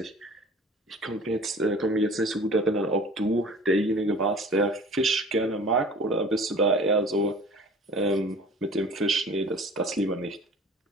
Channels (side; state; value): both; normal; correlation 0.44